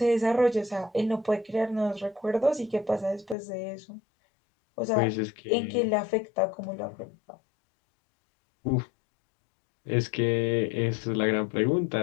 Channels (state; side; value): drops out; right; at 3.4 s